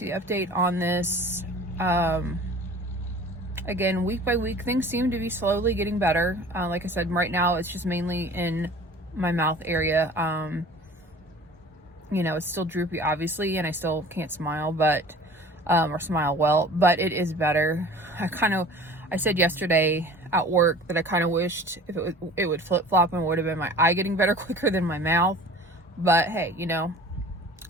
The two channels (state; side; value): normal; both; correlation 0.44